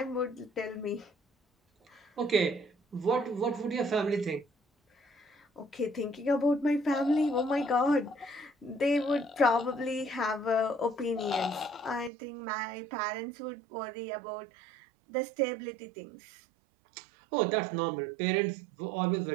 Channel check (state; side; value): drops out; left; at 12.1 s